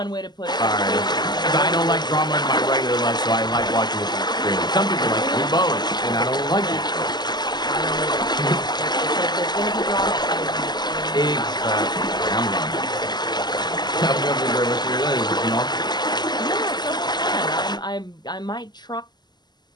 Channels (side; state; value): right; late; 0.21 ms